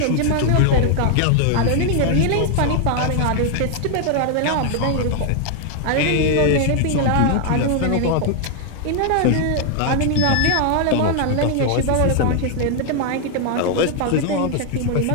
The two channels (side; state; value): both; different; correlation 0.00